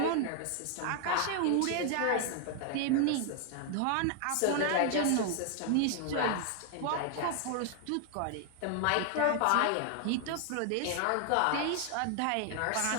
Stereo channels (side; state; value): both; different; correlation 0.00